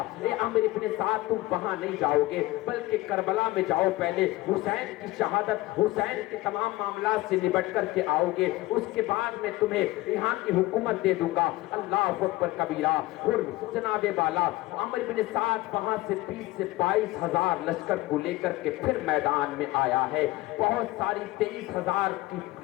ए अमर इब्ने साद, तुम वहां नहीं जाओगे बल्कि करबला में जाओ, पहले हुसैन की शहादत, हुसैन के तमाम मामला से निपट करके आओगे, उसके बाद मैं तुम्हें यहाँ की हुकूमत दे दूंगा। अल्लाह अकबर कबीरा। हुर जनाबे वाला, अमर इब्ने साद वहां से 20-22 लश्कर को लेकर के फिर मैदान में आया है। बहुत सारी 23,000 की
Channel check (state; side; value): quieter; right; 18.8 dB